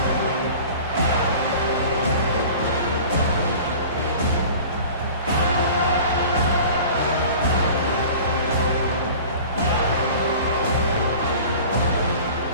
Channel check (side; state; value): both; inverted; correlation -0.41